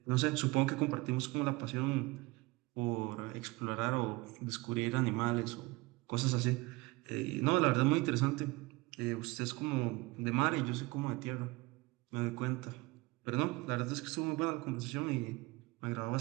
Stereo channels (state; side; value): quieter; left; 23.1 dB